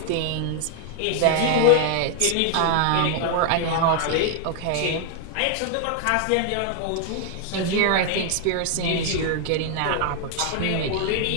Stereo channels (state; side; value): different; both; correlation 0.00